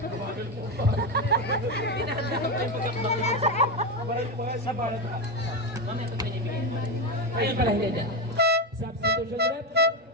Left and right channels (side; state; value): both; normal; correlation 0.12